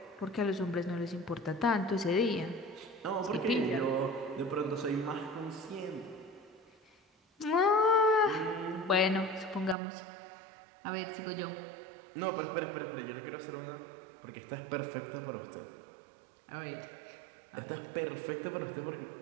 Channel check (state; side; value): drops out; left; at 9.8 s